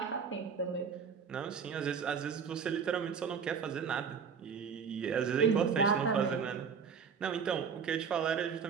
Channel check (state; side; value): quieter; left; 6.3 dB